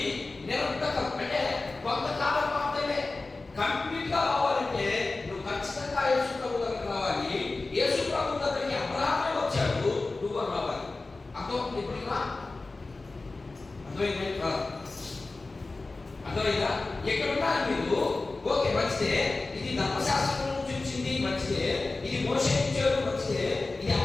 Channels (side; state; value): right; quieter; 3.4 dB